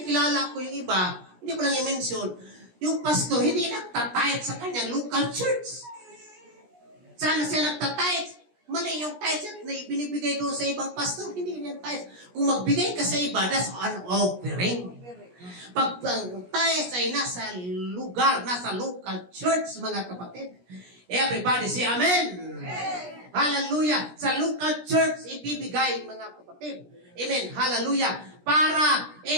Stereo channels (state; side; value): late; left; 17 ms